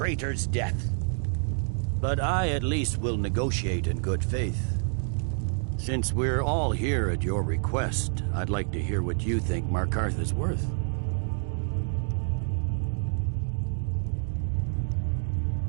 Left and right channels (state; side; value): silent; left; 59 dB below the other